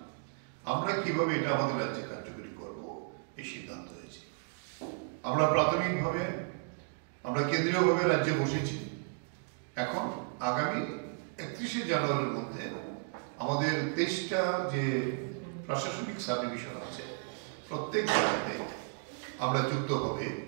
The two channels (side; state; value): left; silent; 55 dB below the other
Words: আমরা কিভাবে এটা আমাদের রাজ্যে কার্যকরী করব এই সিদ্ধান্ত হয়েছে। আমরা প্রাথমিকভাবে আমরা কেন্দ্রীয়ভাবে রাজ্যে বসেছি। এখন আগামী 31শে জানুয়ারির মধ্যে আমাদের 23টা যে প্রশাসনিক সাবডিভিশন আছে, প্রত্যেক জায়গাতে আমরা যুক্তভাবে